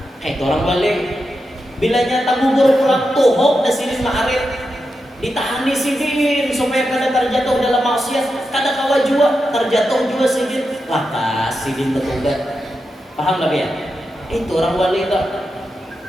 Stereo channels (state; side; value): normal; both; correlation 0.88